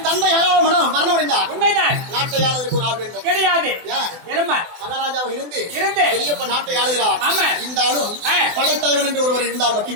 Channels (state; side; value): late; left; 24 ms